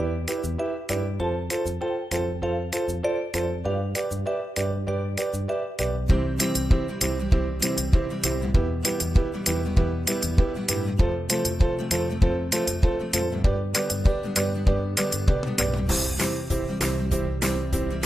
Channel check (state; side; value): normal; both; correlation 0.92